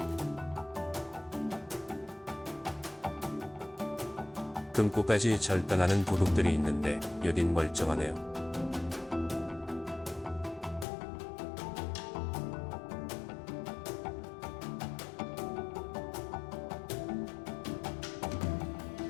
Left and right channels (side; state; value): right; drops out; at 10.9 s